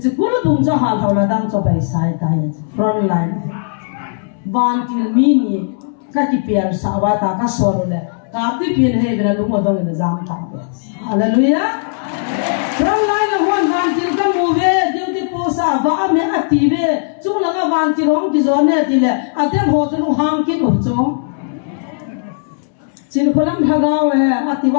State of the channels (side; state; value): right; silent; 68 dB below the other